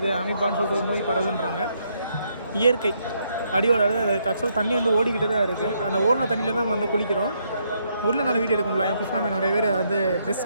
அமீபான்னு சொல்லிட்டு ஒரு நோய் பரவுதுன்றாங்க. இயற்கை அடியோட ஆக்சுவலாக தண்ணி வந்து ஓடிக்கிட்டு தான் இருக்குது. அந்த ஓடின தண்ணியில் தான் நம்ம வந்து குளிக்கிறோம். ஊரில் நல்லா வீடியோ எடுக்க முடியல. என் புஷ்ணாமே நிறைய பேர் வந்து ட்ரெஸ்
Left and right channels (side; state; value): both; inverted; correlation -0.75